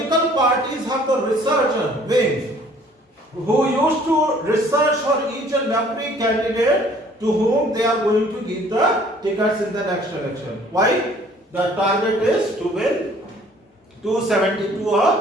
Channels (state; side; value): normal; both; correlation 0.56